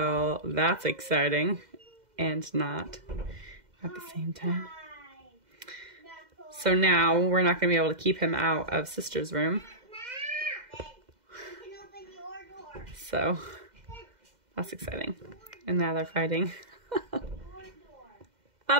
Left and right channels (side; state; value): left; late; 2.1 ms